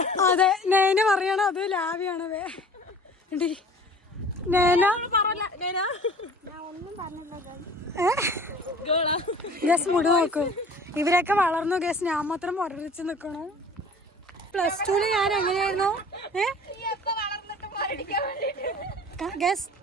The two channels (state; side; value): normal; both; correlation 0.46